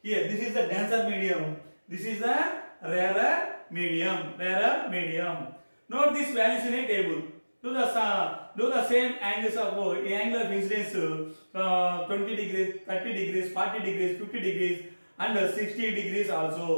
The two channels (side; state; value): both; inverted; correlation -1.00